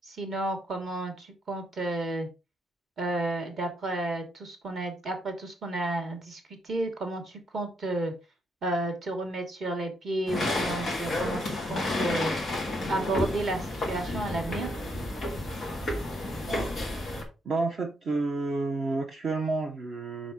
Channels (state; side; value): normal; both; correlation 0.75